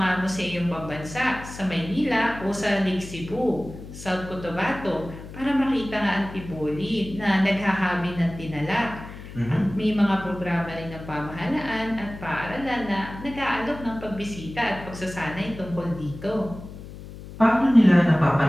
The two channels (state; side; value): noise; left; hum, 14 dB below the sound